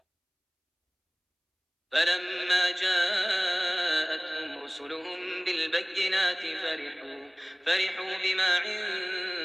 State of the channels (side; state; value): both; identical; correlation 1.00